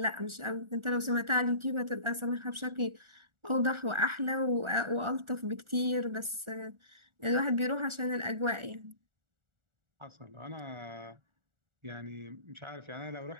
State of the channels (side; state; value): left; late; 1.4 ms